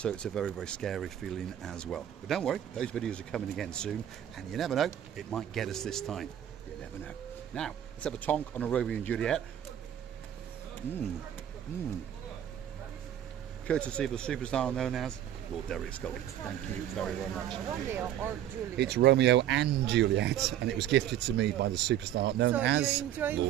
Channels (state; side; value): quieter; left; 11.1 dB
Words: it's a very, very scary feeling as well. But don't worry, those videos are coming again soon, and you never know, it might get us this time. You never know. Now, let's have a tonk on a Romeo and Juliet. Courtesy of the superstar known as Lord Derek Scully. Thank you very, very much. Romeo or Juliet? It's Romeo and Juliet, and it was gifted to me by the superstar known as